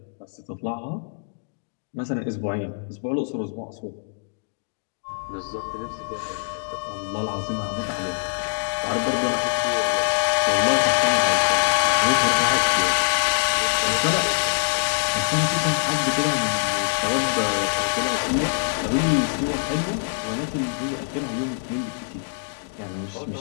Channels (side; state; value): right; silent; digital silence